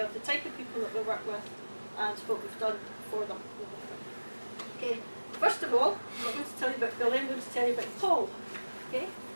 of the type of people that we work with and what we've done for them. Okay. First of all, I'm not going to tell you about Billy, I'm going to tell you about Paul. Okay.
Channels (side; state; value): both; inverted; correlation -1.00